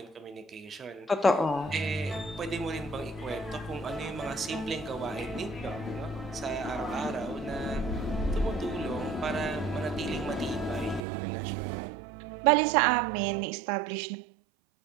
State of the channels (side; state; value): left; drops out; at 11.1 s